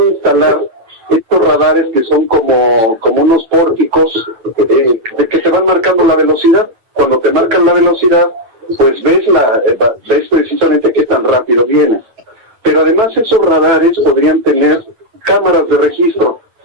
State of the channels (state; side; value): late; left; 9.0 ms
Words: instalar estos radares que son como unos pórticos que te van marcando la velocidad. Cuando te marcan la velocidad, pues ves precisamente qué tan rápido vienes. Pero además esos radares podrían tener cámaras de registro.